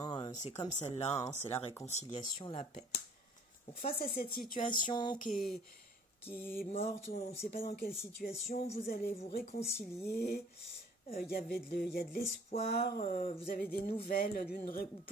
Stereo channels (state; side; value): normal; both; correlation 0.55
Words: C'est comme celle-là, hein. C'est la réconciliation, la paix. Donc face à cette situation qui est morte, on ne sait pas dans quelle situation, vous allez vous réconcilier, il y a de l'espoir, vous avez des nouvelles,